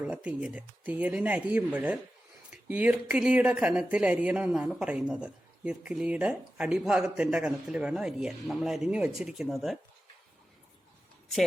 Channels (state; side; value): normal; both; correlation 0.93